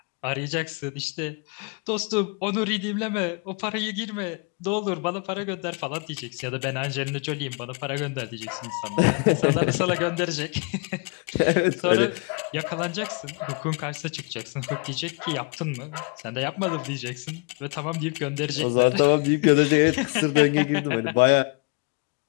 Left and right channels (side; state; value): right; quieter; 32.7 dB